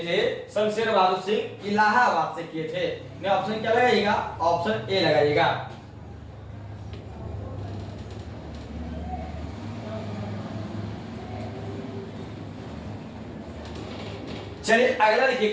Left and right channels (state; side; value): identical; both; correlation 1.00